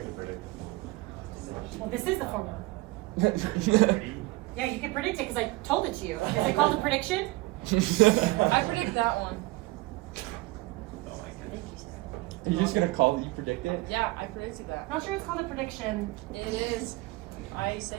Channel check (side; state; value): left; quieter; 21.0 dB